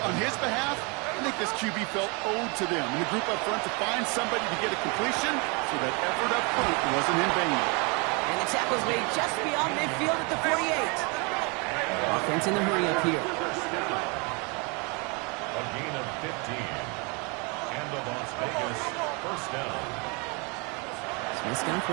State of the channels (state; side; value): quieter; left; 31.1 dB